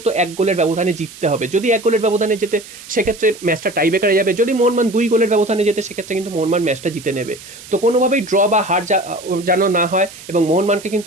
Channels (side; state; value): right; noise; hiss, 17 dB below the sound